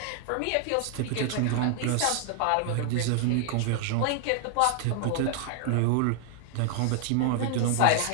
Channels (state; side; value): different; both; correlation 0.00